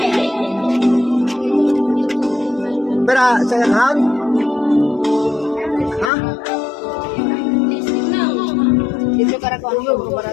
Pero sa account? Ha? Dito kara ko ang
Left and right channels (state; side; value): drops out; right; at 6.1 s